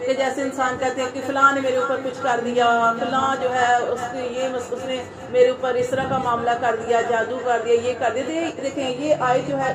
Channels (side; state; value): both; identical; correlation 1.00